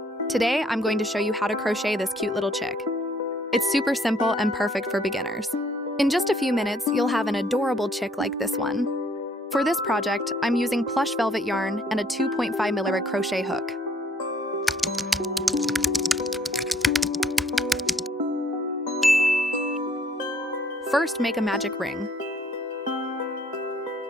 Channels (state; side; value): normal; both; correlation 0.64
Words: Today I'm going to show you how to crochet this cute little chick. It's super simple and perfect for beginners. In just a few minutes, you'll have an adorable chick like this one. For this project, I'm using plush velvet yarn and a 2.5mm crochet hook. First, make a magic ring.